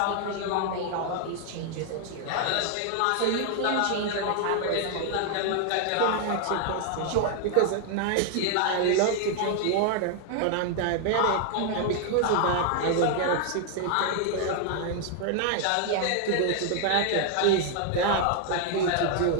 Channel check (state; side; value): different; both; correlation 0.00